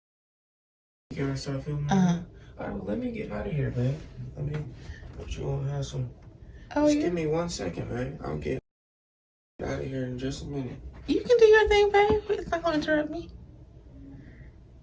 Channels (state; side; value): identical; both; correlation 1.00